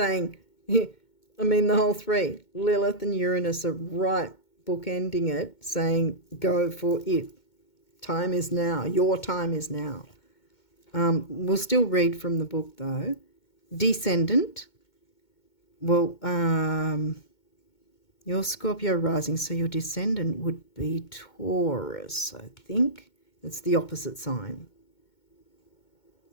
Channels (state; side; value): late; right; 2.2 ms